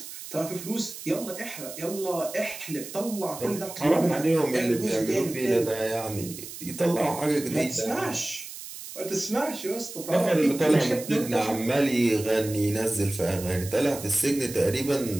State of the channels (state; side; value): noise; right; hiss, 12 dB below the sound